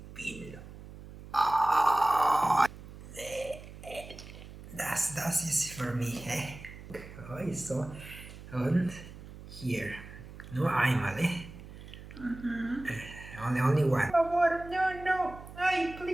in. Oh, that's easy for me. Eh? Okay, so, and here. No animal, eh? Only one. Por favor, no. Ay,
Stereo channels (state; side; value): noise; right; hum, 15 dB below the sound